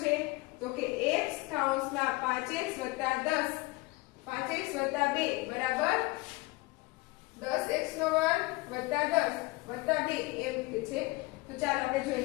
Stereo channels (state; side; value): quieter; right; 22.6 dB